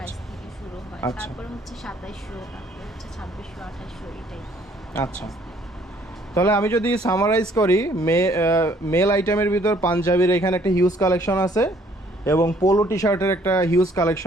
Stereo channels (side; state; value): both; normal; correlation 0.61